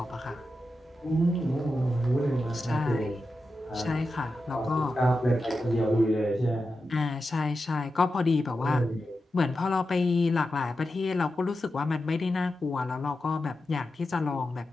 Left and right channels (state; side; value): normal; both; correlation 0.90